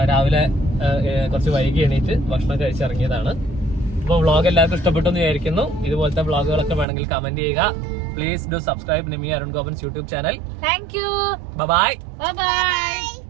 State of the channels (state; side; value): drops out; left; at 6.9 s